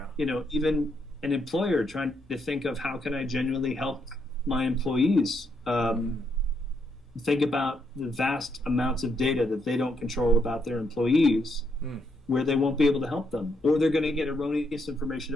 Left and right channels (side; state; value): both; normal; correlation 0.77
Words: Even an employer trying to think of how can I genuinely help my employees think about the vast amounts of data that they don't control about their employees, where they won't be able to help them, or they're going to get erroneous information